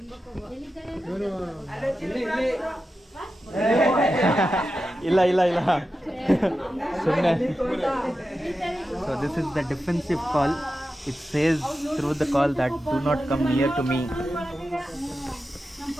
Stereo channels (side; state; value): both; normal; correlation 0.91